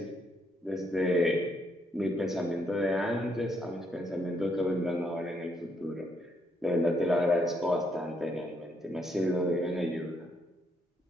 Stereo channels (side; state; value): both; normal; correlation 0.74